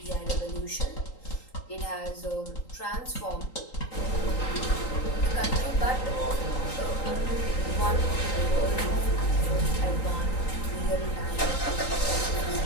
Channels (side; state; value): right; late; 3.8 ms